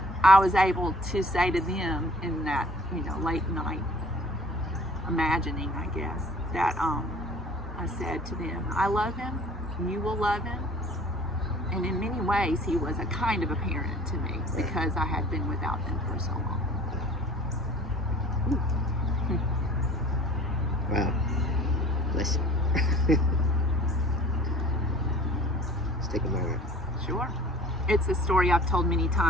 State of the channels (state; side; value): normal; both; correlation 0.48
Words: I was able to say to them in that, late night imagining, I guess, that I said to them, I love him, you will love him. And in many ways, he was a kind of a parent to me because I had been without them for so long. Wow. Bless you. Let's take a moment. Sure. It's a story I've told many